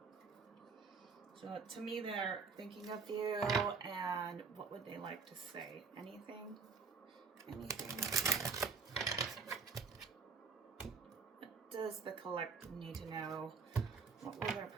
So to me, they're thinking of you, and what would they like to say? Anything? Anything? What does the collective need to know? What will their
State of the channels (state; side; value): quieter; left; 5.0 dB